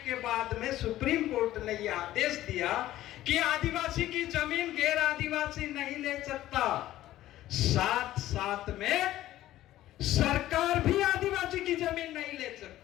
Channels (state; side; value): quieter; right; 14.4 dB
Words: के बाद में सुप्रीम कोर्ट ने यह आदेश दिया कि आदिवासी की जमीन गैर आदिवासी नहीं ले सकता, साथ साथ में सरकार भी आदिवासी की जमीन नहीं ले